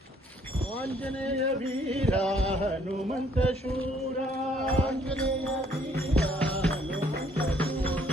आंजनेय वीरा हनुमंत शूरा, आंजनेय वीरा हनुमंत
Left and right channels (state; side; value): normal; both; correlation 0.64